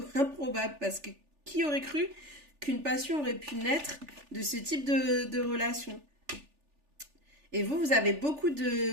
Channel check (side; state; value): left; late; 3.4 ms